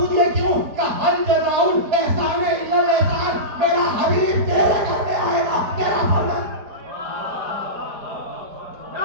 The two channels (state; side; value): late; left; 4.6 ms